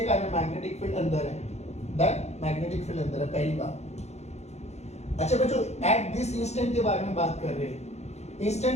कारण मैग्नेटिक फील्ड अंदर है, दैट मैग्नेटिक फील्ड अंदर है, पहली बात। अच्छा बच्चों, एट दिस इंस्टेंट के बारे में बात कर रहे हैं।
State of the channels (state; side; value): late; right; 0.32 ms